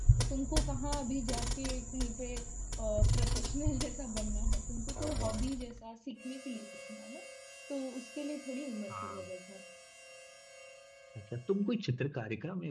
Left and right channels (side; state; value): both; identical; correlation 1.00